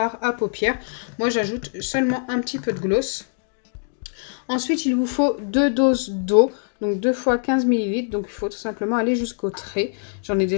à paupières. Moi j'ajoute seulement un petit peu de gloss. Ensuite il vous faut 2 doses d'eau, donc 2 fois 15 ml. Donc il faut tout simplement aller jusqu'au trait. J'en ai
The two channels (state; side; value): silent; right; digital silence